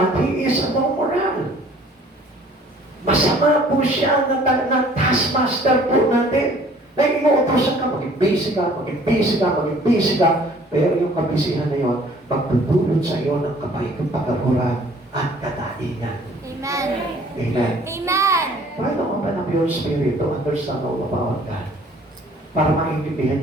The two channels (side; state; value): both; normal; correlation 0.54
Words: he is a moral. Masama po siya na taskmaster po natin. Na inuutosan ka, maging busy ka. Pero yung kabisihan na yun, magdudulot sa iyo ng kapahintulad at kadaingan. Amen. Amen. Amen. Try to open up your spirit to understand all about God. Para maintindihan